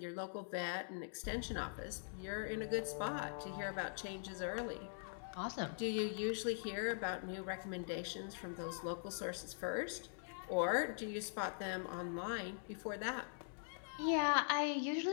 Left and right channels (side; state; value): right; silent; digital silence